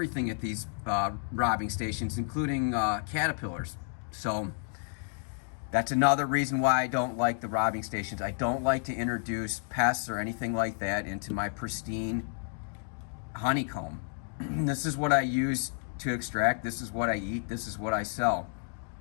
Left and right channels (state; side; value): silent; right; 57 dB below the other